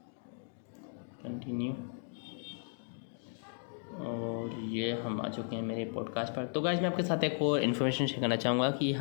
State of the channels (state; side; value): silent; right; 54 dB below the other